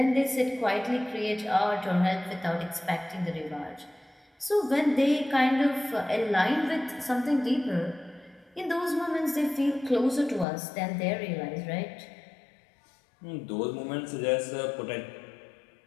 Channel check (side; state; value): right; drops out; at 10.5 s